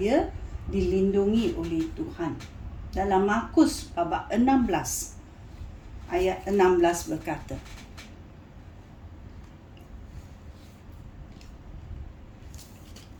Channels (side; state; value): both; identical; correlation 1.00